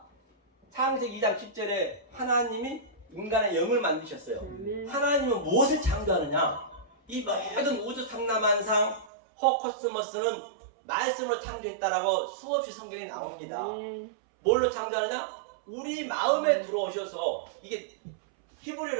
창세기 2장 10절에 하나님이 인간의 영을 만드셨어요. 하나님은 무엇을 창조하느냐? 이 모든 우주 상남한상 호코스모스는 말씀으로 창조했다라고 수없이 성경에 나옵니다. 뭘로 창조하느냐? 우리 마음에 들어오셔서 이게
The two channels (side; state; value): left; drops out; at 9.1 s